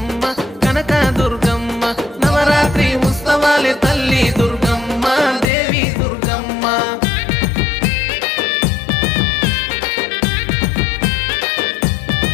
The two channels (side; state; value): right; drops out; at 5.5 s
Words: కనక దుర్గమ్మ నవరాత్రి ఉత్సవాలే తల్లి దుర్గమ్మ దేవి దుర్గమ్మ